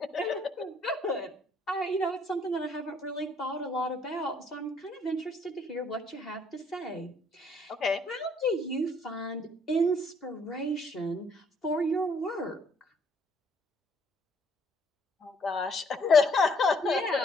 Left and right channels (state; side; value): normal; both; correlation 0.64